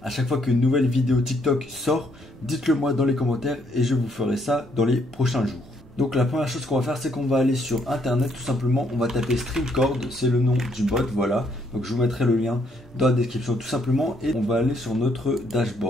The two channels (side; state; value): both; normal; correlation 0.71